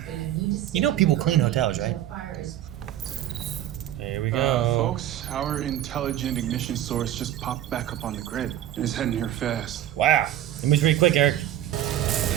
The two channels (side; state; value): left; quieter; 12.4 dB